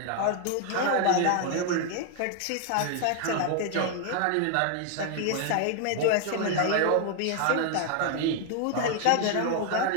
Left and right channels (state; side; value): different; both; correlation 0.00